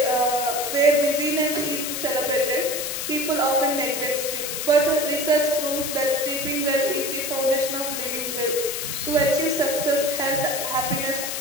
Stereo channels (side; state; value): left; noise; hiss, 3 dB below the sound